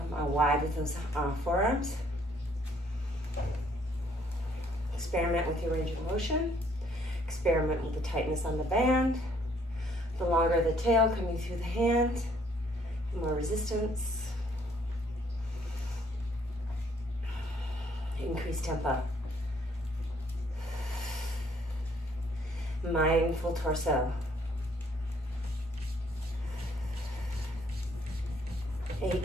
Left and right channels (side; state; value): both; normal; correlation 0.65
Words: wide with those forearms. Experiment with your range of motion. Experiment with the tightness on the band. The longer the tail coming through the hand. More resistance. Increase tempo. Mindful torso. 8,